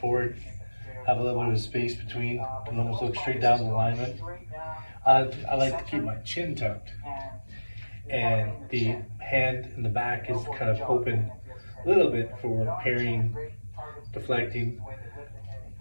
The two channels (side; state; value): both; inverted; correlation -1.00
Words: have a little bit of space between, and almost look straight down the alignment. I like to keep my chin tucked, and the hand in the back is kind of open a little bit for parrying, deflecting.